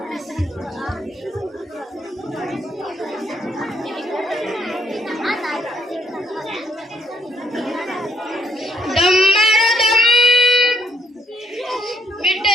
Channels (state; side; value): normal; both; correlation 0.68